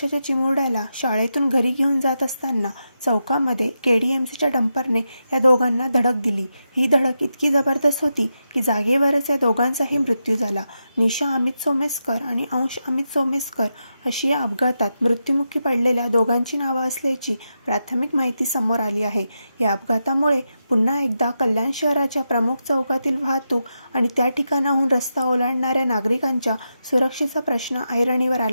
चिमुरड्याला शाळेतून घरी घेऊन जात असताना चौकामध्ये केडीएमसीच्या डंपरने या दोघांना धडक दिली। ही धडक इतकी जबरदस्त होती की जागेवरच या दोघांचाही मृत्यू झाला। निशा अमित सोमेस्कर आणि अंश अमित सोमेस्कर अशी या अपघातात मृत्युमुखी पडलेल्या दोघांची नावे असल्याची प्राथमिक माहिती समोर आली आहे। या अपघातामुळे पुन्हा एकदा कल्याण शहराच्या प्रमुख चौकातील वाहतूक आणि त्या ठिकाणाहून रस्ता ओलांडणाऱ्या नागरिकांच्या सुरक्षेचा प्रश्न ऐरणीवर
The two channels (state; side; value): inverted; both; correlation -0.87